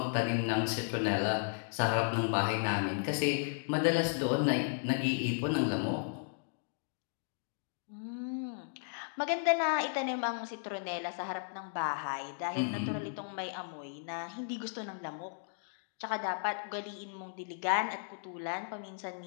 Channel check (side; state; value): right; silent; digital silence